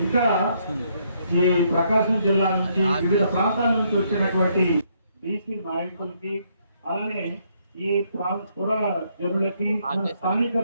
ఇంకా ఈ ప్రకాశం జిల్లా నుంచి, వివిధ ప్రాంతాల నుంచి వచ్చినటువంటి బీసీ నాయకులకి, అలానే ఈ పుర జనులకి, స్థానిక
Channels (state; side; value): inverted; both; correlation -0.72